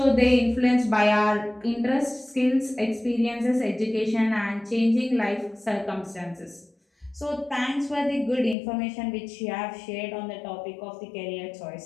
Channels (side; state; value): right; drops out; at 8.6 s